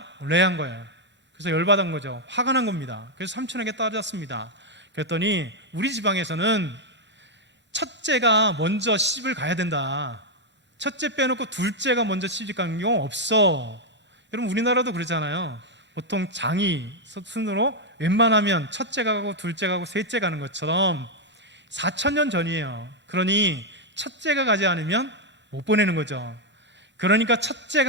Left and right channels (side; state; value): both; normal; correlation 0.00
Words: 레아인 거예요. 그래서 열받은 거죠. 화가 난 겁니다. 그래서 삼촌에게 따졌습니다. 그랬더니 우리 지방에서는 첫째가 먼저 시집을 가야 된다. 첫째 빼놓고 둘째가 먼저 시집 가는 경우 없어. 여러분 우리나라도 그러잖아요. 보통 장이 순으로 웬만하면 첫째가 가고 둘째가 가고 셋째 가는 것처럼 4,000년 전이에요. 그러니 첫째가 가지 않으면 못 보내는 거죠. 그러니까